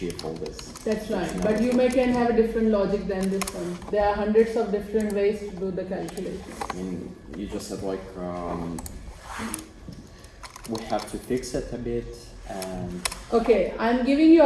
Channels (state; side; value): identical; both; correlation 1.00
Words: all this. That's right. But you can have a different logic than this one. There are hundreds of different ways to do the calculation. I mean, you just said like we have to fix it a bit, and Okay, I'm giving you